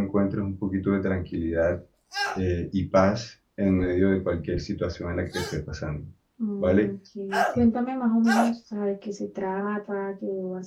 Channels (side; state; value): both; identical; correlation 1.00